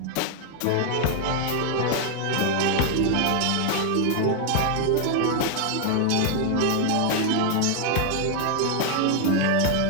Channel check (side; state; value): both; different; correlation 0.00